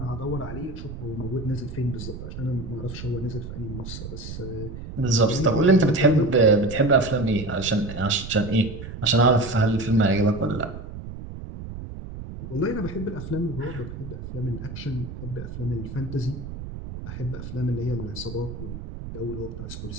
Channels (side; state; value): right; noise; rumble, 10 dB below the sound